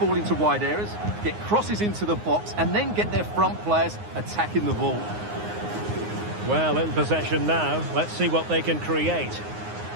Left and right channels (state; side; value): late; left; 9.6 ms